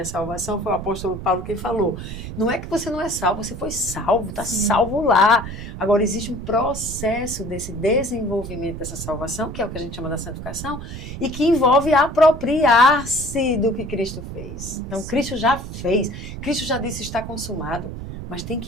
salvação, foi o apóstolo Paulo quem falou. Não é que você não é salvo, você foi salvo, está salvo lá. Agora, existe um processo desse desenvolvimento dessa salvação, que é o que a gente chama da santificação, e que envolve apropriar-se do que Cristo fez. Então, Cristo já fez, Cristo já disse está consumado. Mas tem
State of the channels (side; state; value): right; noise; rumble, 9 dB below the sound